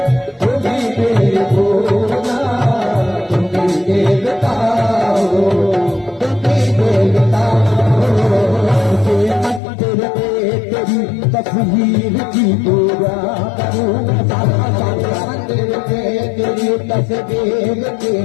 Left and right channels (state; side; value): drops out; right; at 9.6 s